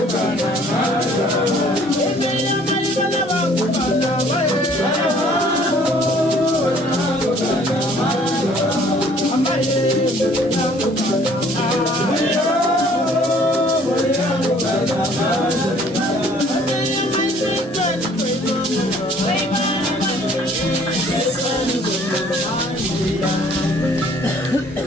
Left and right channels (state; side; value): normal; both; correlation 0.57